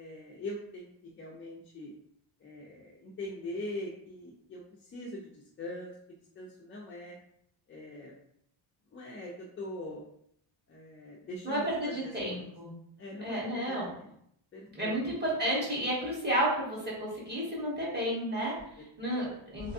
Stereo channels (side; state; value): both; normal; correlation 0.05